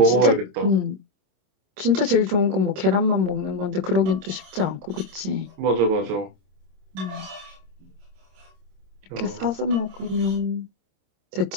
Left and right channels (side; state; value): left; late; 26 ms